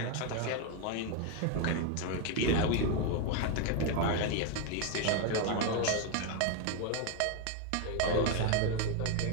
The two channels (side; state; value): both; different; correlation 0.01